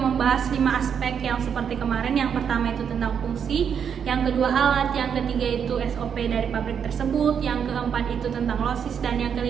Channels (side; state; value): left; quieter; 7.5 dB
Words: 5 aspek yang seperti kemarin. Yang pertama itu tentang fungsi, yang kedua alat, yang ketiga itu SOP dari pabrik tersebut, yang keempat itu tentang losis, dan yang